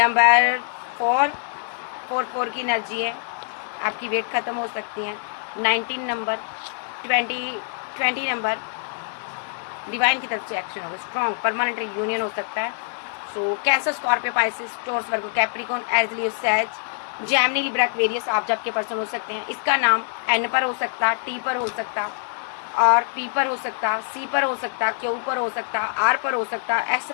4 की एनर्जी है, आपकी वेट ख़त्म हो सकती है। 19 नंबर, 20 नंबर डिवाइन की तरफ से एक्शन होगा। स्ट्रॉन्ग परमानेंट यूनियन हो सकता है। So Cancer, Scorpio, Pisces, Taurus, Virgo, Capricorn, Aries, Sage, Gemini, Libra, Aquarius आप जब के पर्सन हो सकते हैं। इसका नाम एन पर हो सकता, टी पर हो सकता, और पी पर हो सकता, सी पर हो सकता, क्यू पर हो सकता, आर पर हो सकता, एस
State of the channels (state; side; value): silent; right; digital silence